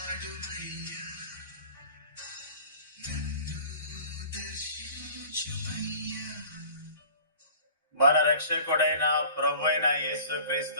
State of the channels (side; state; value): both; inverted; correlation -0.46